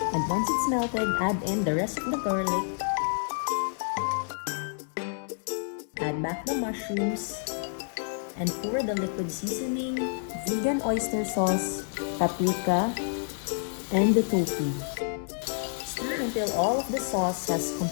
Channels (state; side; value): silent; right; 59 dB below the other